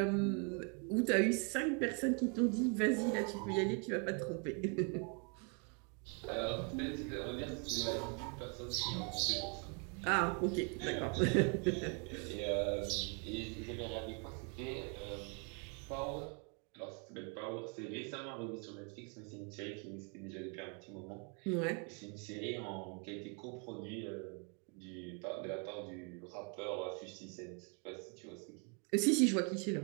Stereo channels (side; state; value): left; quieter; 37.5 dB